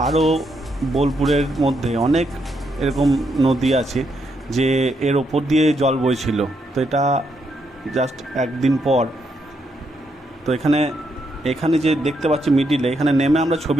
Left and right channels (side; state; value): both; normal; correlation 0.78